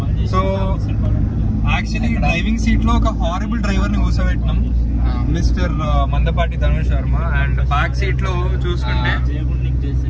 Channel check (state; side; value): identical; both; correlation 1.00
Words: సో యాక్చువల్లీ డ్రైవింగ్ సీట్ లో ఒక హారబుల్ డ్రైవర్ ని కూర్చోబెట్టినాం, mister Mandapati Dhanush Sharma. And back seat లో చూసుకుంటే